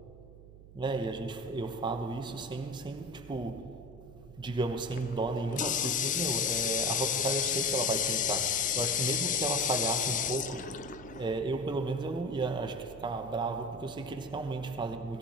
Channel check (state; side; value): noise; right; hum, 18 dB below the sound